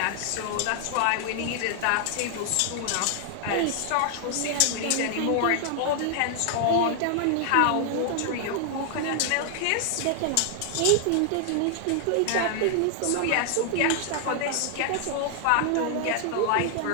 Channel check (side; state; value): both; different; correlation 0.00